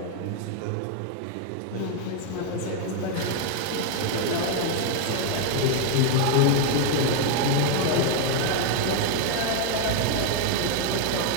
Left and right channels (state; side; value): different; both; correlation 0.01